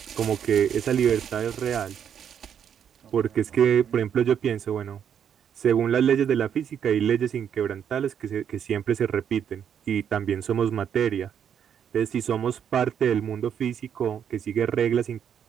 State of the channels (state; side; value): quieter; left; 8.5 dB